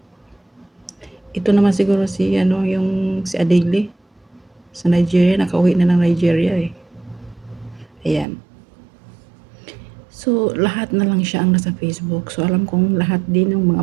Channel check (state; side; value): drops out; left; at 8.2 s